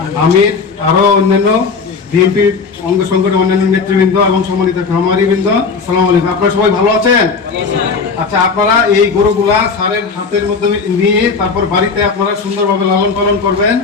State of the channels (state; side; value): quieter; right; 4.9 dB